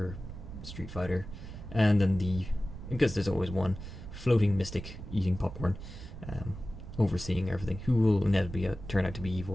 Street Fighter, and then because there's always one floating mystic eating popcorn, overseeing everything, who will inevitably turn out to be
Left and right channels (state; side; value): noise; right; rumble, 11 dB below the sound